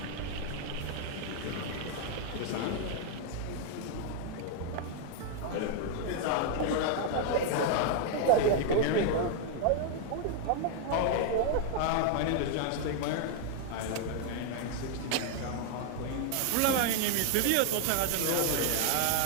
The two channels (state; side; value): different; both; correlation 0.00